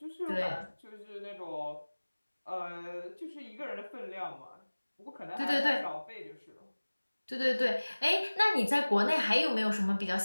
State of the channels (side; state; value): both; inverted; correlation -1.00